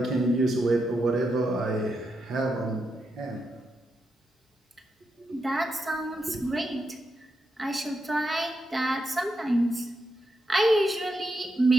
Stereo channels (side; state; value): both; normal; correlation 0.85